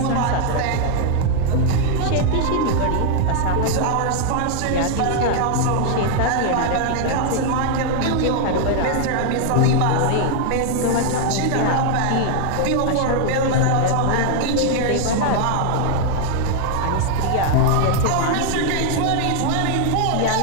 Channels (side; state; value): both; different; correlation 0.00